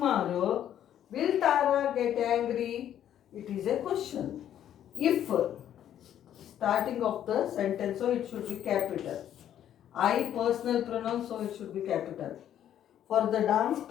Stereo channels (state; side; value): quieter; right; 10.6 dB